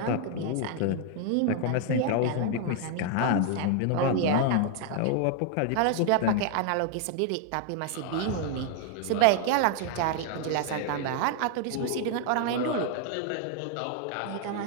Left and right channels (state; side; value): different; both; correlation 0.00